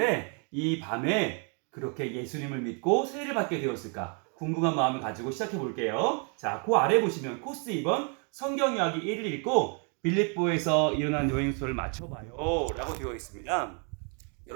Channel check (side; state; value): left; quieter; 39.4 dB